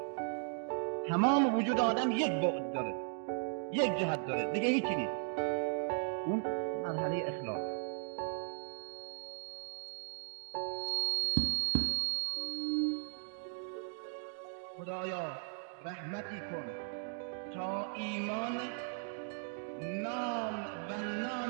تمام وجود آدم یک بعد داره، یک جهت داره، دیگه هیچی نیست. اون مرحله اخلاص. خدایا رحمتی کن تا ایمان نام و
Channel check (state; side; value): silent; left; 53 dB below the other